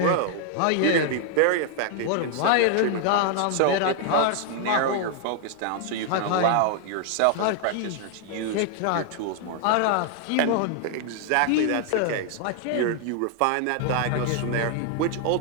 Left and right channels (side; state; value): both; different; correlation 0.00